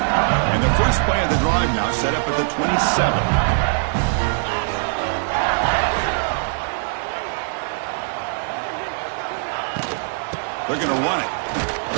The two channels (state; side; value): silent; left; digital silence